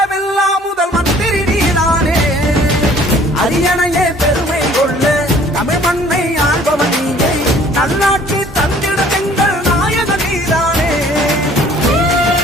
முதல் மந்திரி நீதானே. அரியணையே பெருமை கொள்ள தமிழ் மண்ணை ஆள்பவன் நீயே. நல்லாட்சி தந்திட எங்கள் நாயக நீதானே.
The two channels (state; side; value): normal; both; correlation 0.54